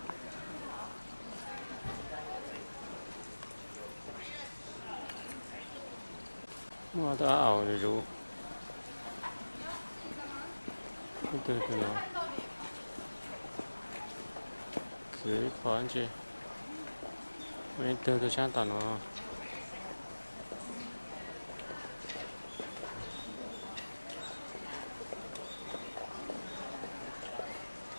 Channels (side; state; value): both; inverted; correlation -1.00